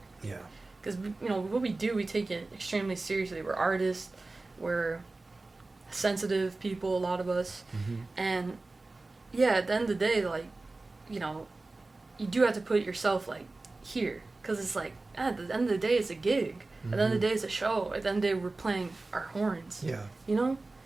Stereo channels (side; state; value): left; quieter; 3.3 dB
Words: Yeah. because, you know, what we do, we take it extremely seriously. We're artists. We're sensitive people, a lot of us. Mm-hmm. And, yeah, at the end of the day, like, you know, you do have to put yourself, like, here. Because it's like, at the end of the day, it's a gig. At the end of the day, it's a show. At the end of the day, we're playing our horns. Yeah. You know?